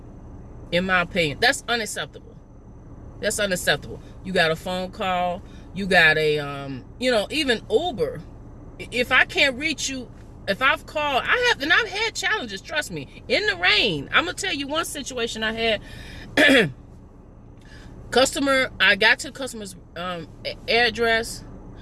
in my opinion. That's unacceptable. That's unacceptable. You got a phone call. You got a, you know, even Uber. If I can't reach you, if I've called, I've had challenges, trust me, in the rain. I'm going to tell you one situation I had. I got to the customer's address.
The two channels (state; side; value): identical; both; correlation 1.00